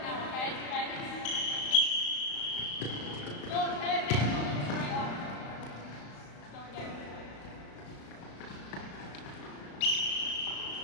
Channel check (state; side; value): late; right; 35 ms